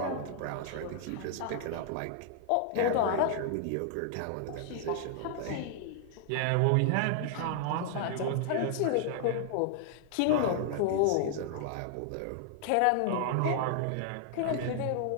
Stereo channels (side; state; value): both; different; correlation 0.00